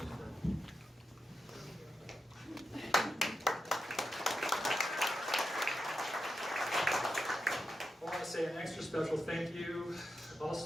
I want to say an extra special thank you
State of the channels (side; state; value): both; normal; correlation 0.87